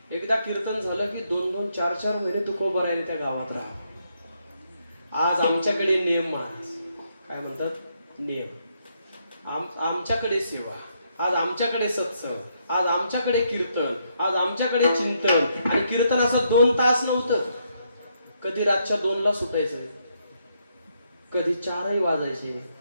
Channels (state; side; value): inverted; both; correlation -0.76